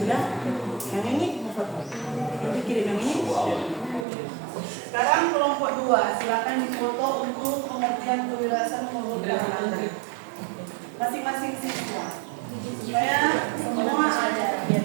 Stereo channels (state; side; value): drops out; left; at 4.0 s